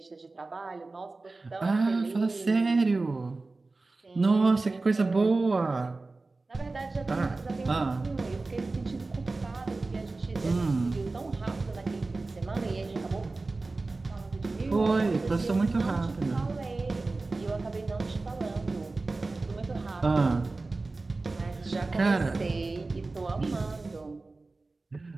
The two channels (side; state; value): left; quieter; 3.4 dB